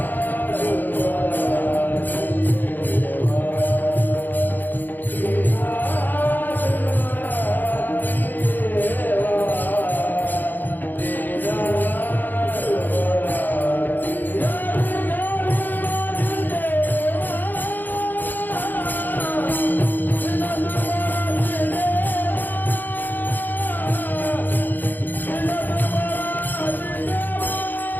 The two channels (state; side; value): late; right; 0.088 ms